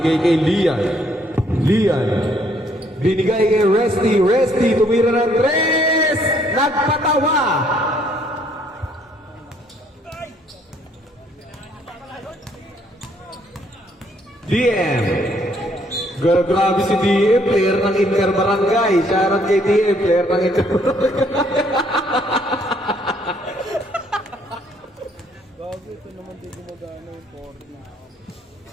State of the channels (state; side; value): normal; both; correlation 0.66